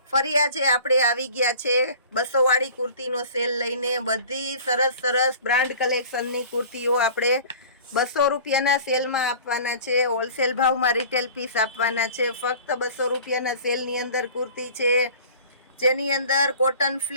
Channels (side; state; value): both; inverted; correlation -0.43